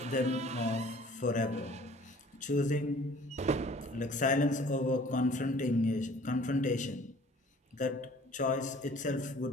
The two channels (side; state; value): both; normal; correlation 0.51